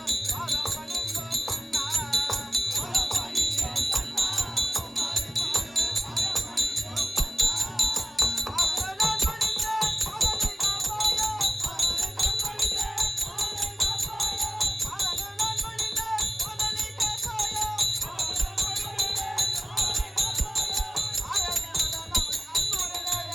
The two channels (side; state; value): both; normal; correlation 0.95